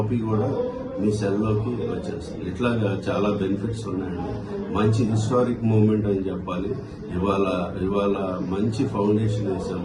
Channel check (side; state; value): both; identical; correlation 1.00